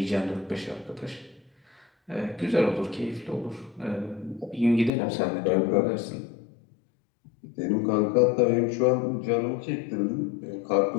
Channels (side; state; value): right; drops out; at 4.9 s